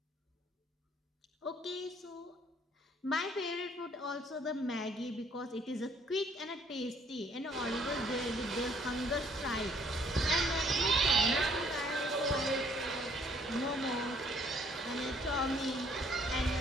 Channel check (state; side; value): normal; both; correlation 0.63